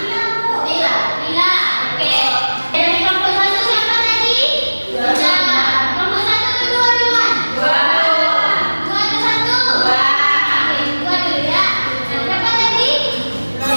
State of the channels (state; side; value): inverted; both; correlation -1.00